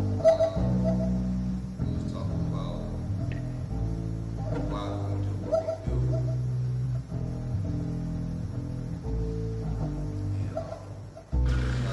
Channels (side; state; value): both; identical; correlation 1.00